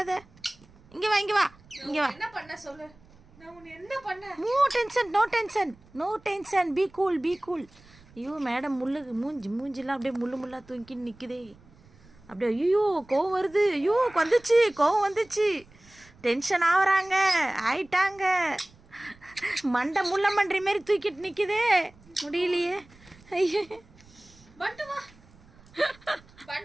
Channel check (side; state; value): right; noise; rumble, 26 dB below the sound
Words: இங்கே வா இங்கே வா இங்கே வா. என்ன பண்ண சொல்லு. நான் உன்னை என்ன பண்ண? No tension no tension no tension. Be cool be cool. ஐயோ மேடம் மூஞ்சிலாம் அப்படியே முள்ளாக தூங்கின்னு நிற்குதே. அப்படியே ஐயோ கோவம் வருது. ஐயோ கோவம் வந்துச்சு. டென்ஷன் ஆகுறாங்க ஆயிட்டாங்க. மண்டை முள்ள மன்றி மாரி தூக்கிட்டு நிற்குதே. முடியலையே. ஐயோ பண்டு வா.